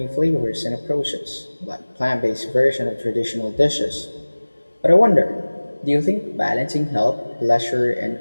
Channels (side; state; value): both; inverted; correlation -1.00